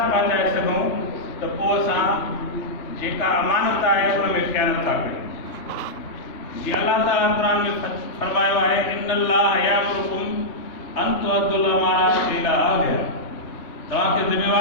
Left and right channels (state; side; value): late; right; 3.2 ms